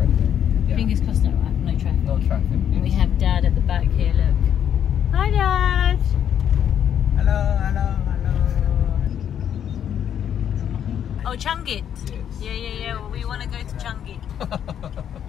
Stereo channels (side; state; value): right; quieter; 9.3 dB